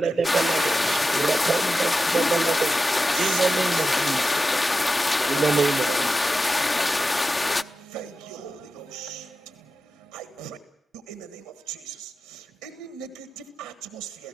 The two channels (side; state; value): both; normal; correlation 0.91